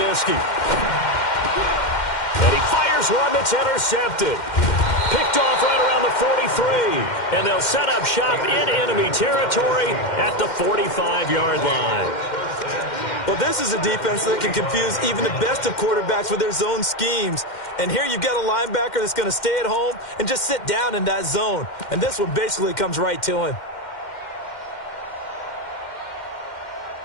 And he fires one that's intercepted. Picked off right around the 43. And they'll set up shop in enemy territory at the 45-yard line. Well, this is a defense that can confuse even the best of quarterbacks with their zone schemes. And here you've got a linebacker that's going to stay at home and just sit down in that zone. And this one basically comes right to him.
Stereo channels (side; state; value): right; late; 2.1 ms